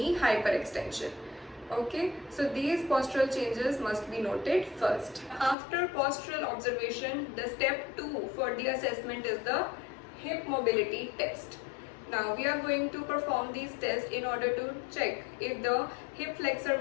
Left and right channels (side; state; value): right; drops out; at 5.6 s